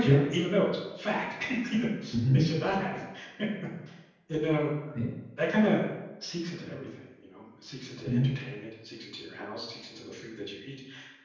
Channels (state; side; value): identical; both; correlation 1.00